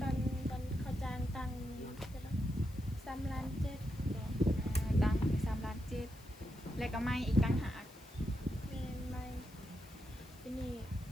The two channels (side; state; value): left; noise; hiss, 23 dB below the sound